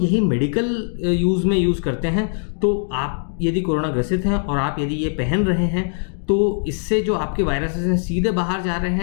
मेडिकल यूज़ में यूज़ करते हैं, तो आप यदि कोरोना ग्रसित हैं और आप यदि ये पहन रहे हैं, तो इससे जो आपके वायरसेस हैं सीधे बाहर जा रहे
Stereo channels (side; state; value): right; silent; 65 dB below the other